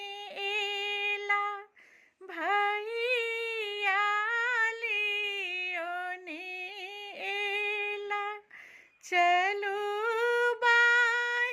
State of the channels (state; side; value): identical; both; correlation 1.00